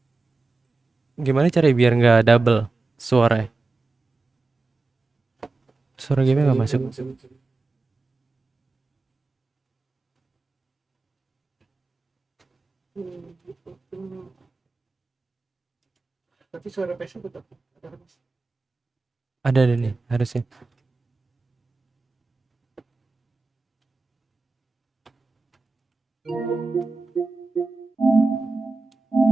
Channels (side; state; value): left; quieter; 3.6 dB